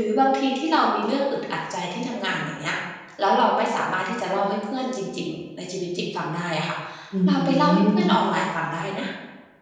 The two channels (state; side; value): identical; both; correlation 1.00